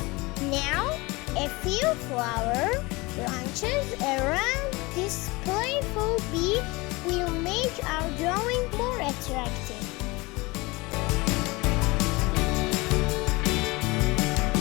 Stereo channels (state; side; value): quieter; right; 23.8 dB